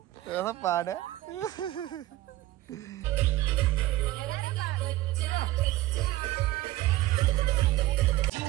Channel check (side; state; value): left; quieter; 16.4 dB